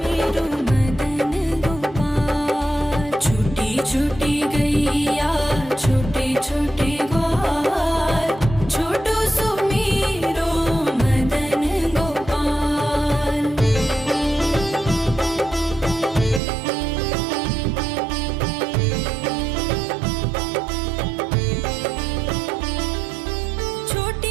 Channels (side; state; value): left; drops out; at 16.4 s